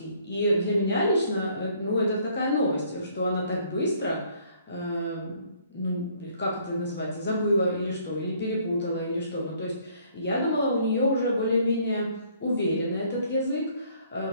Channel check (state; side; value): inverted; both; correlation -0.62